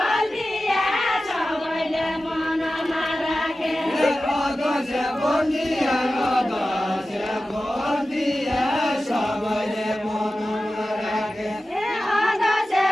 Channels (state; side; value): normal; both; correlation 0.94